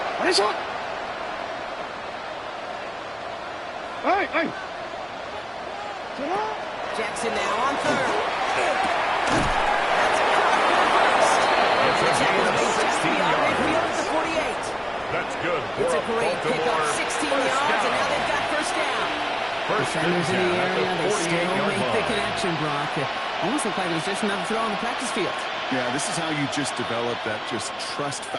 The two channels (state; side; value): identical; both; correlation 1.00